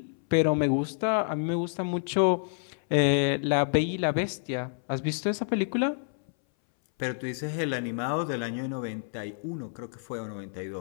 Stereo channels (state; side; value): silent; right; 59 dB below the other